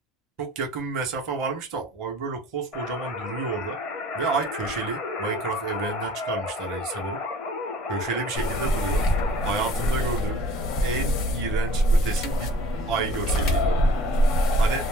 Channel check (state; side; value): normal; both; correlation 0.49